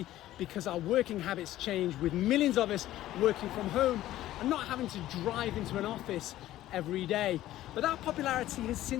because our working habits changed, with millions of us working from home and not having to drive into an office every day. But that popularity has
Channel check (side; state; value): right; quieter; 14.4 dB